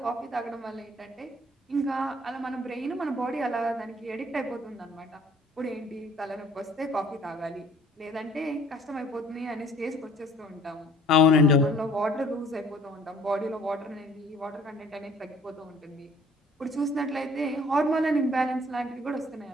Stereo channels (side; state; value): both; normal; correlation 0.55